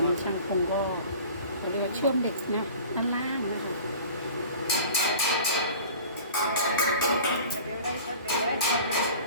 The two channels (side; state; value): both; inverted; correlation -0.43